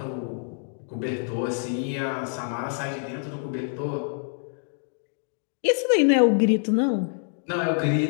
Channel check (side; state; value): right; silent; digital silence